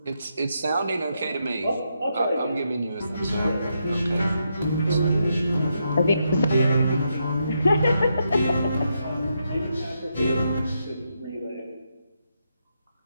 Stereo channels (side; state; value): both; inverted; correlation -0.81